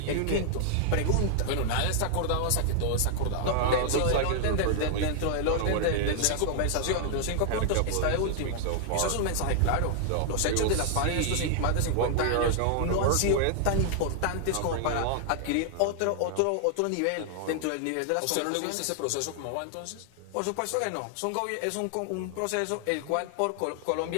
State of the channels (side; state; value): both; different; correlation -0.01